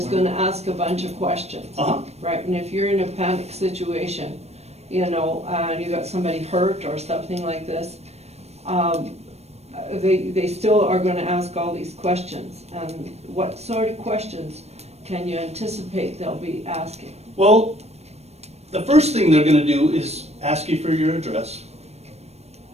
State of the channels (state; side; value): late; left; 0.31 ms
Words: gonna ask a bunch of questions. Uh-huh, Right, and if you're in a panic situation, you know, you got somebody hurt or something like this, they still are gonna ask all these questions. And what sort of questions can you anticipate they'll be asking? well, the first thing they're gonna do is ask you for your address,